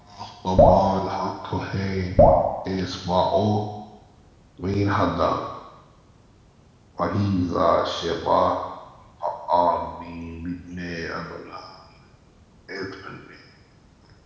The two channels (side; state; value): both; identical; correlation 1.00